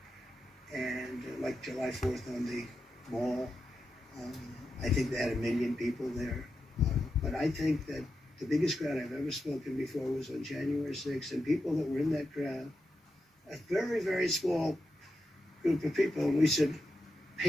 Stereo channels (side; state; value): both; normal; correlation 0.88